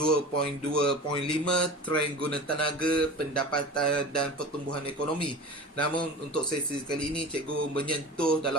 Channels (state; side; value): normal; both; correlation 0.34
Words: trend guna tenaga, pendapatan dan pertumbuhan ekonomi. Namun untuk sesi kali ini cikgu menyentuh